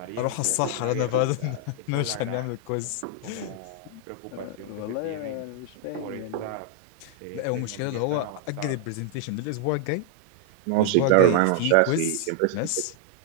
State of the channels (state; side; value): different; both; correlation 0.00